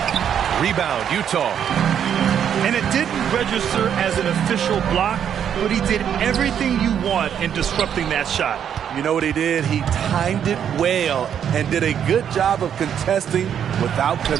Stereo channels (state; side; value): quieter; left; 8.8 dB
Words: Rebound, Utah. And it didn't register as an official block, but he did everything you want in disrupting that shot. You know what he did? He timed it well and did a good job of contesting without